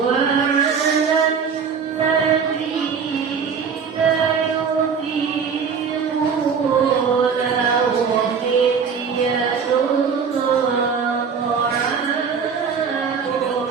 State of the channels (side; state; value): left; quieter; 6.3 dB